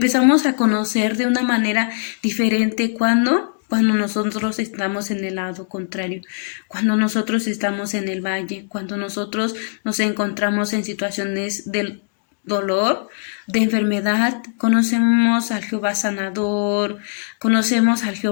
a conocer de una manera diferente cuando nosotros estamos en el lado contrario, cuando nosotros estamos en el valle, cuando nosotros nos encontramos en situaciones del dolor, de enfermedad. Conocemos al Jehová sanador, conocemos al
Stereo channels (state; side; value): silent; right; digital silence